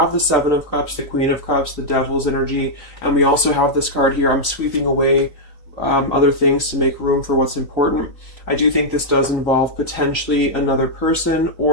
the Seven of Cups, the Queen of Cups, the Devil's energy, and we also have this card here, I'm sweeping away other things to make room for what's important. I do think this does involve potentially another person,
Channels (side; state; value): right; late; 3.9 ms